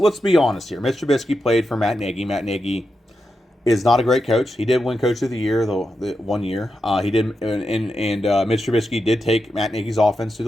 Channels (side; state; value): both; normal; correlation 0.87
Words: be honest here. Mitch Trubisky played for Matt Nagy. Matt Nagy is not a great coach. He did win Coach of the Year the 1 year. He did, and Mitch Trubisky did take Matt Nagy's offense to